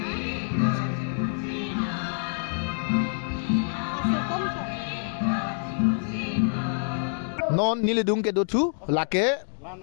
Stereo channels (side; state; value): right; silent; digital silence